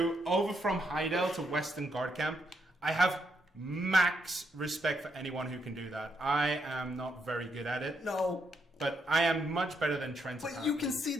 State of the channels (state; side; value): normal; both; correlation 0.78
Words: Heidel to Western Guard Camp. I have max respect for anyone who can do that. I am not very good at it. No. But I am much better than Trent. But you can see